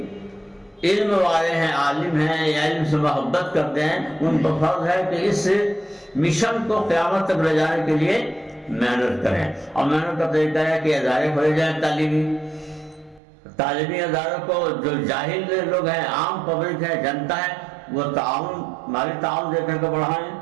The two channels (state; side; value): drops out; left; at 13.2 s